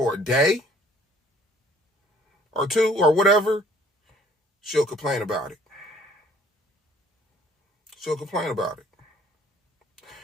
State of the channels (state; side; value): normal; both; correlation 0.57